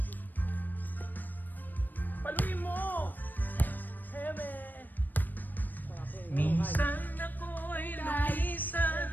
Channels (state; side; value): late; right; 0.089 ms